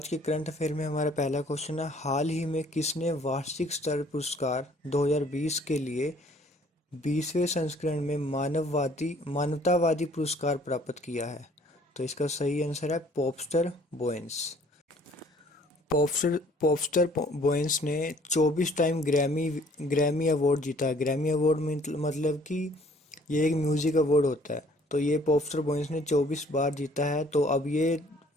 के करंट अफेयर में हमारा पहला क्वेश्चन है, हाल ही में किसने वार्षिक स्तर पुरस्कार 2020 के लिए 20वें संस्करण में मानवतावादी पुरस्कार प्राप्त किया है? तो इसका सही आंसर है पॉपस्टर बोयंस। पॉपस्टर बोयंस ने 24 टाइम ग्रैमी अवार्ड जीता है। ग्रैमी अवार्ड मतलब कि ये एक म्यूजिक अवार्ड होता है। तो ये पॉपस्टर बोयंस ने 24 बार जीता है। तो अब ये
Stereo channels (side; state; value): both; normal; correlation 0.57